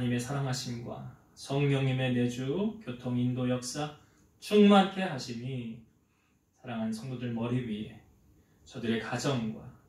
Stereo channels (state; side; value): identical; both; correlation 1.00